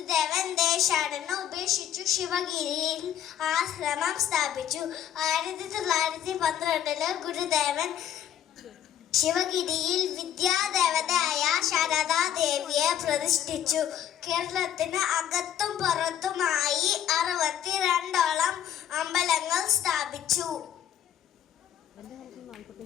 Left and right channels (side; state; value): right; quieter; 10.4 dB